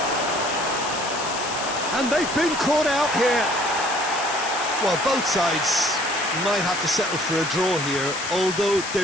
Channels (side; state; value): left; noise; hiss, 8 dB below the sound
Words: And they've been caught out here. Well, both sides might have to settle for a draw here, although